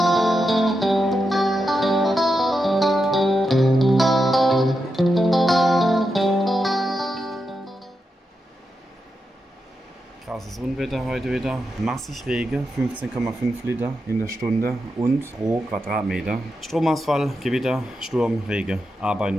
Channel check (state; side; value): normal; both; correlation 0.87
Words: Krasses Unwetter heute wieder. Massig Regen, 15,5 Liter in der Stunde und pro Quadratmeter. Stromausfall, Gewitter, Sturm, Regen. Arbeiten